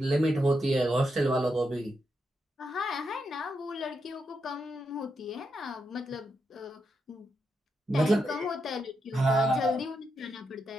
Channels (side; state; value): both; normal; correlation 0.83